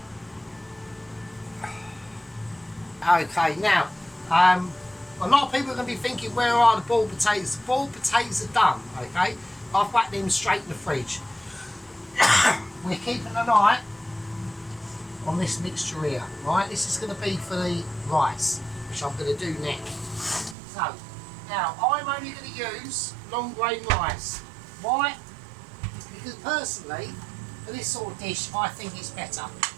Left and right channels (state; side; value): drops out; left; at 20.6 s